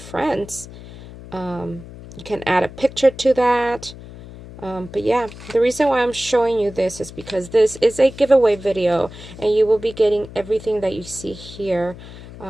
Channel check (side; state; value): left; noise; hum, 16 dB below the sound